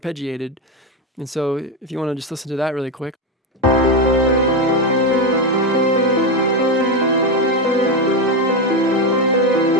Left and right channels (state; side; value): normal; both; correlation 0.10